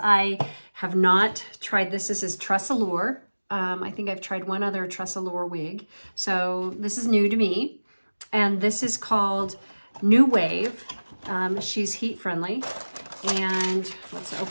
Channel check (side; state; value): both; inverted; correlation -1.00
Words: have not tried this. This is TressAllure. I think I've tried one other TressAllure wig. So this is new to me. And this is called New Wave. She's heat friendly. And let's